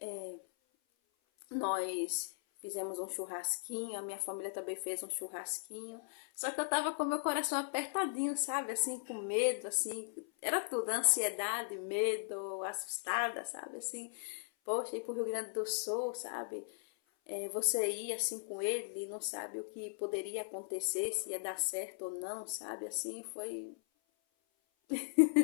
Nós fizemos um churrasquinho, a minha família também fez um churrasquinho. Só que eu tava com meu coração apertadinho, sabe? Assim, com medo, assim. Era tudo, ansiedade, medo, assustada, sabe? Assim, poxa, ir pro Rio Grande do Sul, sabe? Você ir assim com ele e não sabe o que poderia acontecer, se ia dar certo ou não, sabe? Assim, foi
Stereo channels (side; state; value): right; silent; 53 dB below the other